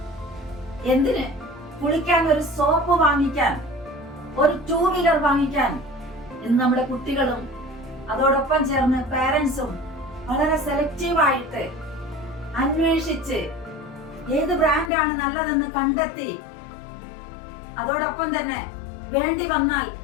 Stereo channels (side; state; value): right; drops out; at 14.9 s